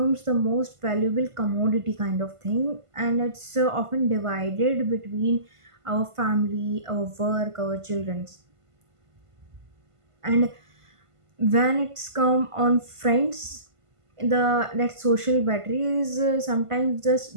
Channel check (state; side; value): late; left; 1.5 ms